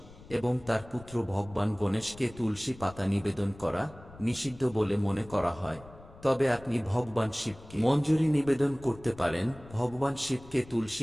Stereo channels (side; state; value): left; noise; rumble, 20 dB below the sound